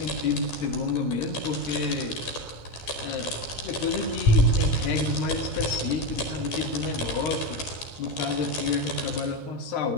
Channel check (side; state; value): right; late; 13 ms